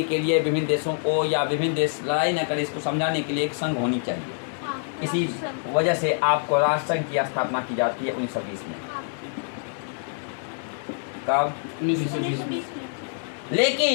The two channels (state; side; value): silent; right; digital silence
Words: के लिए, विभिन्न देशों को या विभिन्न देश लड़ाई न करे इसको समझाने के लिए एक संघ होनी चाहिए। इसी वजह से आपको राष्ट्र संघ की स्थापना की जाती है 1920 में। कब? 1920 में।